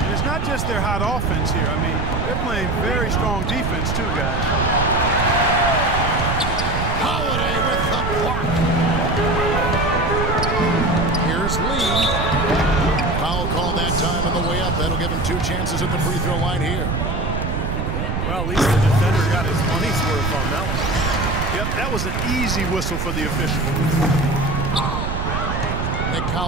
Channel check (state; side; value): noise; right; rumble, 1 dB below the sound